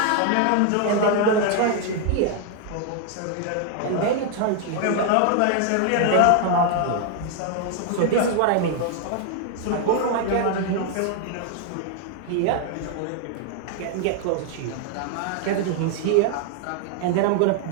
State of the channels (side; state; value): both; different; correlation 0.00